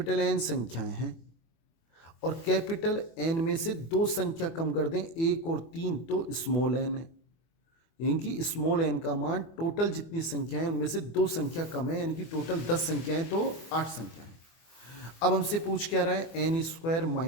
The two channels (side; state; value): right; late; 24 ms